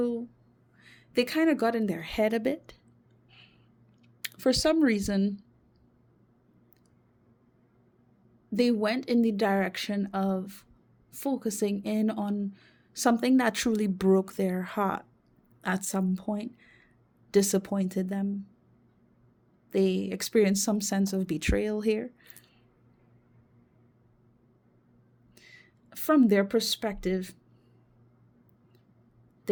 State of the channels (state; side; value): identical; both; correlation 1.00